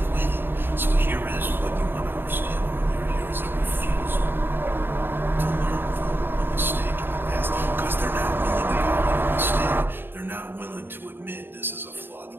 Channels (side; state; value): left; late; 0.099 ms